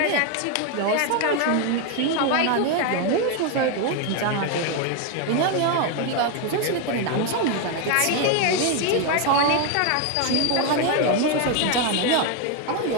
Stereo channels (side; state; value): both; different; correlation 0.01